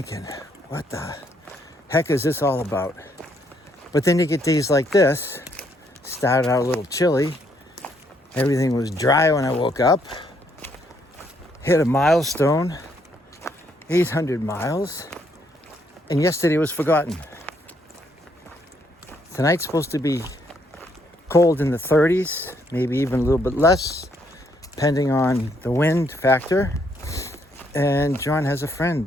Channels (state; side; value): normal; both; correlation 0.71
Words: what the heck is this all about? But then you get days like this. Started out a little chilly. Everything was dry when I woke up. Hit a milestone, 800 miles, and yesterday was forgotten. Tonight's supposed to be cold in the 30s, maybe even a little bit less, depending on the wind factor. And John has a friend